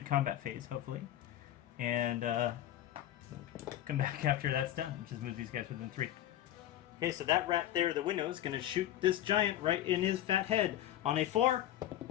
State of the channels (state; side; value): quieter; right; 12.6 dB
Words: combat phase, hopefully, and come back after that's done. Just move these guys within 3. Okay, so that rat there, the window, is going to shoot this giant right in his fat head. On a 4,